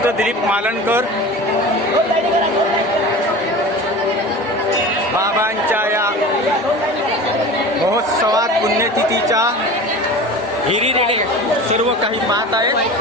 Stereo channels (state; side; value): normal; both; correlation 0.35